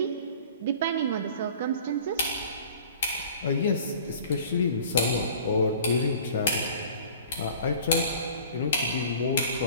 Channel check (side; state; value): both; inverted; correlation -0.46